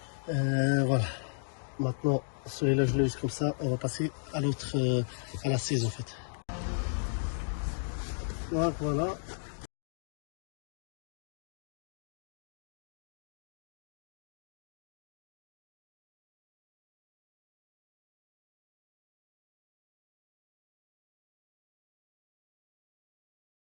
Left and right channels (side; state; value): right; silent; digital silence